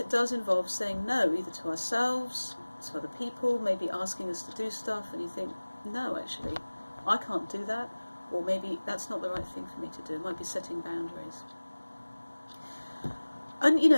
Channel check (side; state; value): both; inverted; correlation -1.00